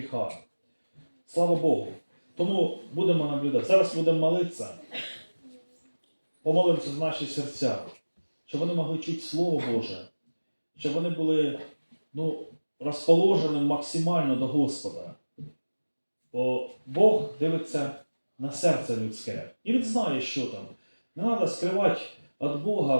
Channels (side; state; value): both; inverted; correlation -1.00